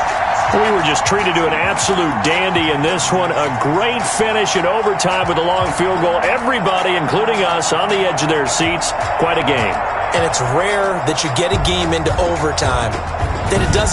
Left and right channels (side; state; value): both; identical; correlation 1.00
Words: We were just treated to an absolute dandy in this one. A great finish in overtime with a long field goal. Everybody, including us, on the edge of their seats. Quite a game. And it's rare that you get a game into overtime that it